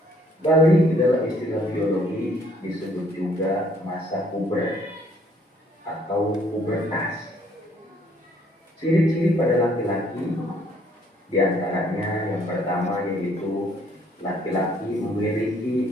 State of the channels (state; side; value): normal; both; correlation 0.64